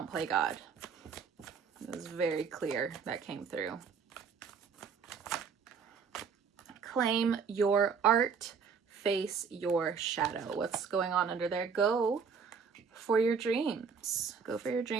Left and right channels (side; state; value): left; quieter; 6.0 dB